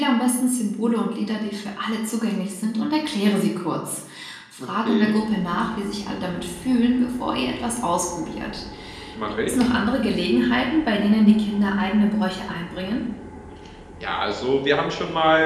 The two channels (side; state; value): both; identical; correlation 1.00